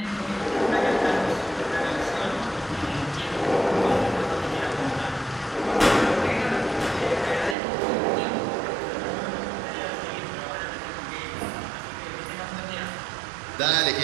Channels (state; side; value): drops out; left; at 7.6 s